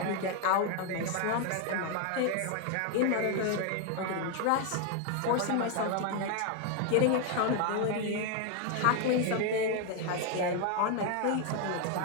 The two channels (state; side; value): different; both; correlation 0.01